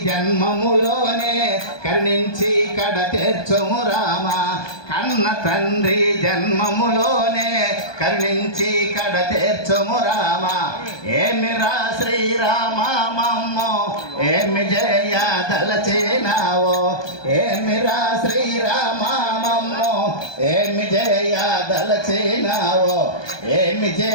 జన్మములోనే కరుణించి కడ తీర్చుము రామ. కన్న తండ్రి జన్మములోనే కరుణించి కడ తీర్చుము రామ. ఏమిరా శ్రీరామ మమ్మో ఏమి జయ దలచినావో. ఏమిరా శ్రీరామ మమ్మో ఏమి జయ దలచినావో. ఏమి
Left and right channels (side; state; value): right; late; 1.2 ms